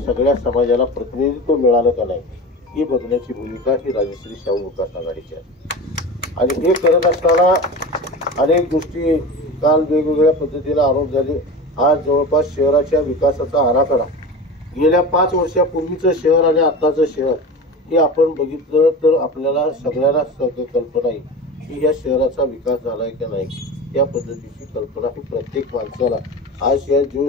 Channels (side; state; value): both; normal; correlation 0.30